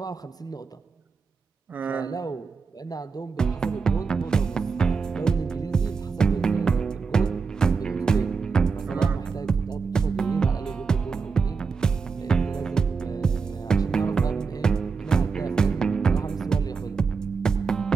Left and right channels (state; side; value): quieter; left; 5.1 dB